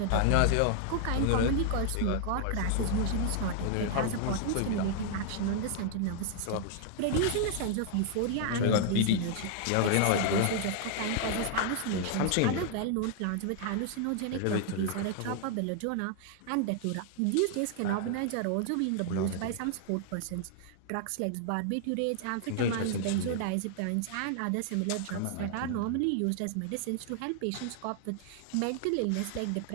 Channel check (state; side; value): different; both; correlation 0.00